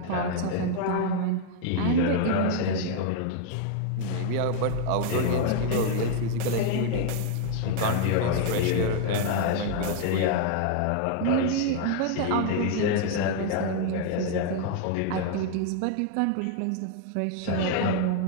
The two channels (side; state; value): both; different; correlation 0.00